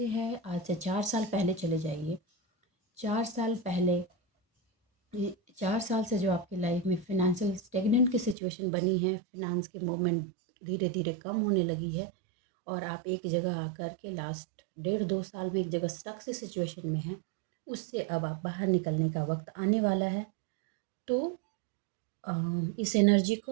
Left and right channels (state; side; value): drops out; left; at 8.3 s